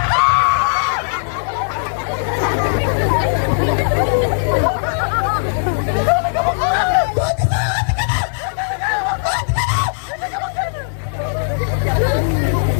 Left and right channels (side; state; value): right; silent; digital silence